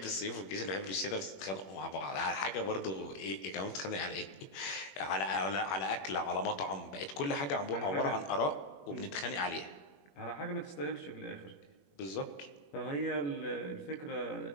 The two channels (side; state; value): right; late; 21 ms